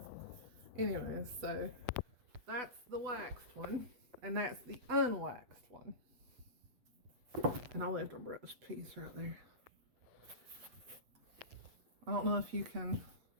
Anyways, so that's the waxed one, and that's the unwaxed one. And I left a brush piece right there. I don't know if you can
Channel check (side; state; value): left; late; 8.0 ms